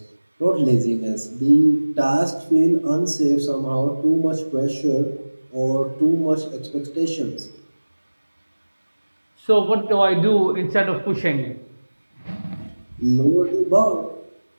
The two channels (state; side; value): inverted; both; correlation -1.00